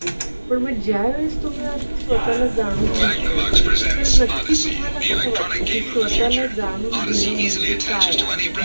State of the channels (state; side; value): inverted; both; correlation -1.00